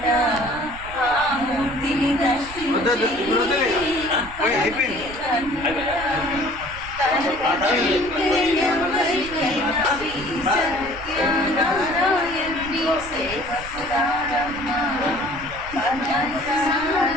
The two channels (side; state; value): right; noise; rumble, 15 dB below the sound